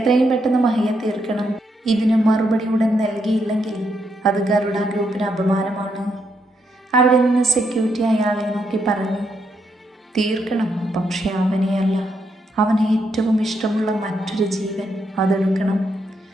പെട്ടെന്ന് മഹിയെ തീർക്കണം. ഇതിന് മറുപടി ഉടൻ നൽകിയില്ലെങ്കിൽ അത് ഗരുഡ ഗ്രൂപ്പിന് അപമാനമാണ്. അവിടെ നിന്ന് സെക്യൂരിറ്റി അയാളെ നോക്കി പറഞ്ഞു. തീർക്കണം, പക്ഷെ അവനെയല്ല. അവന് ഏറ്റവും ഇഷ്ടമുള്ള മറ്റൊരു ജീവൻ അതെടുക്കണം.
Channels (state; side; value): normal; both; correlation 0.79